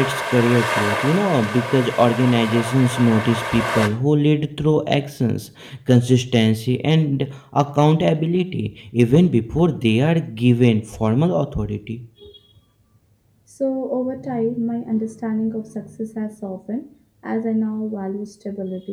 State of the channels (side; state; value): both; identical; correlation 1.00